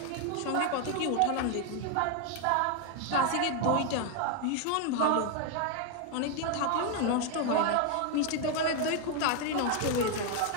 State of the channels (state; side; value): different; both; correlation 0.01